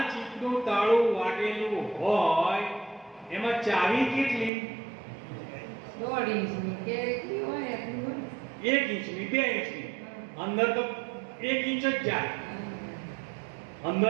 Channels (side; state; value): left; drops out; at 4.5 s